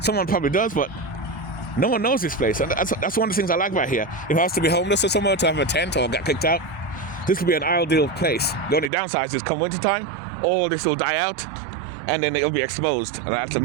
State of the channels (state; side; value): drops out; left; at 8.9 s